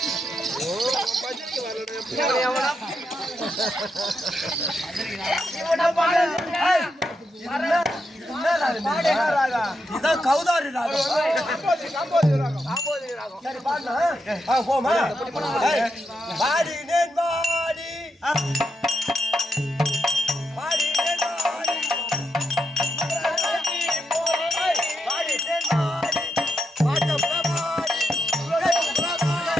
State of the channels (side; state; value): both; normal; correlation 0.84